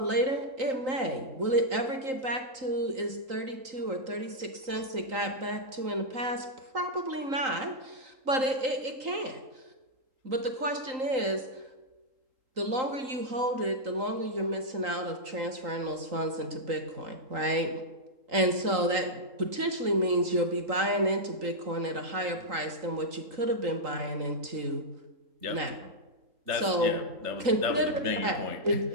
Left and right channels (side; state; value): left; late; 3.9 ms